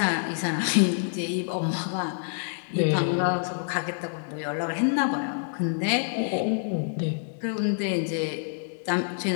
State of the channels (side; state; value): right; silent; digital silence